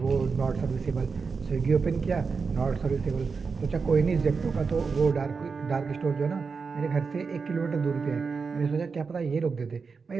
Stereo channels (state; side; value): quieter; left; 5.0 dB